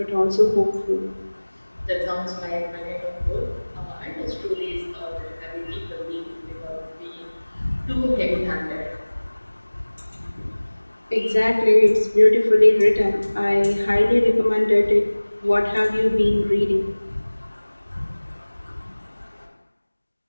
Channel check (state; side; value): inverted; both; correlation -1.00